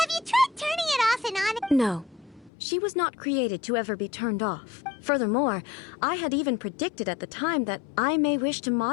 you tried turning it off and on? No. She was not created to ever be turned off. Furthermore, I had even predicted at the time that I may wish to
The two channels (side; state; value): right; drops out; at 2.5 s